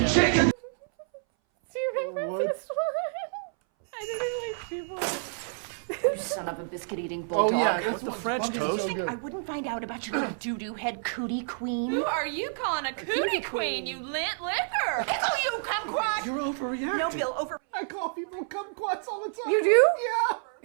chicken. Do you remember this one? I didn't like people. You son of a biscuit-eating bulldog. Oh yeah, that's With the French toast. So I wouldn't find out about your little doo-doo head cootie queen. Who are you calling a cootie queen, you lint liquor? Pickle you, kumquat! You're overreacting. No, Bill, I call people kumquats all the time. You do?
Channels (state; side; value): silent; left; 59 dB below the other